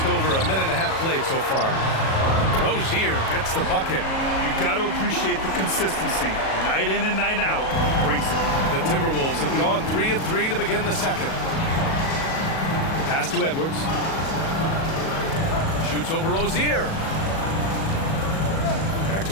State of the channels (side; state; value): right; late; 37 ms